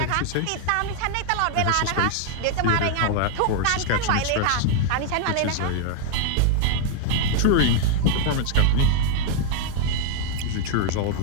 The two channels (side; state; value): both; different; correlation 0.00